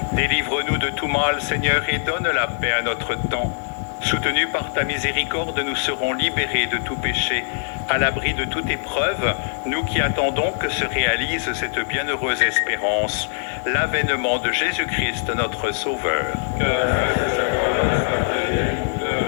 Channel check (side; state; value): right; silent; digital silence